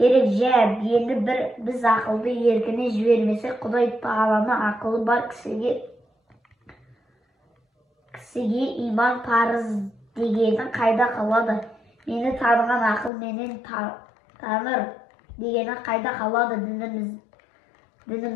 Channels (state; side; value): drops out; right; at 13.1 s